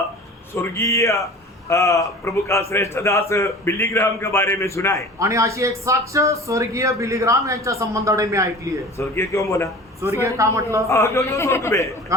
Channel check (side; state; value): both; normal; correlation 0.40